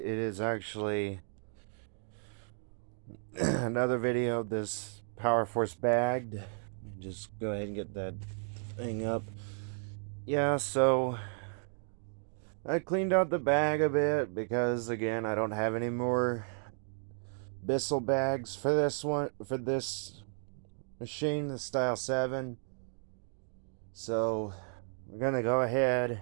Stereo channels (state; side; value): silent; left; 55 dB below the other